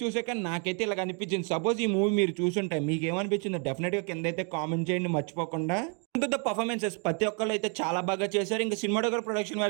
చూసాక నాకైతే ఇలా అనిపించింది. సపోజ్ ఈ మూవీ మీరు చూసుంటే మీకు ఏమనిపించిందో డెఫినెట్ గా కింద అయితే కామెంట్ చేయండి మర్చిపోకుండా. ద పర్ఫార్మెన్సెస్ ప్రతి ఒక్కళ్ళు అయితే చాలా బాగా చేశారు. ఇంకా సినిమాటోగ్రఫీ ప్రొడక్షన్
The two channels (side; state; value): left; quieter; 38.0 dB